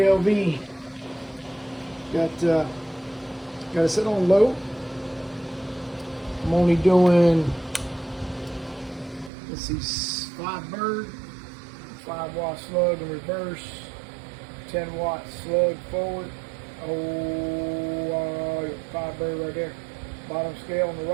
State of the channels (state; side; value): drops out; left; at 9.3 s